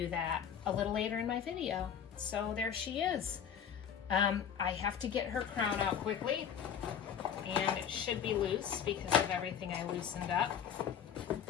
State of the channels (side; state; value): right; quieter; 8.4 dB